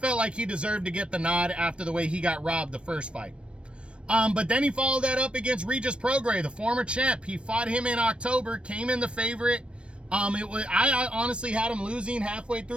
like he deserved to get the nod after the way he got robbed the first fight. But then he followed that up against Regis Prograis, the former champ. He fought him in October, came in the favorite. I honestly had him losing halfway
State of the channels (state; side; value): late; left; 0.059 ms